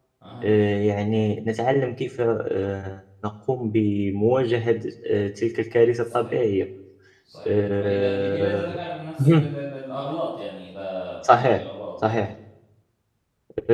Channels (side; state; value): both; identical; correlation 1.00